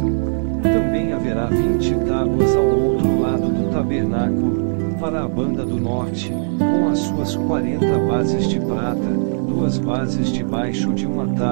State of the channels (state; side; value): silent; left; digital silence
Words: Também haverá 20 tábuas ao outro lado do tabernáculo, para a banda do norte, com as suas 40 bases de prata, 2 bases debaixo de uma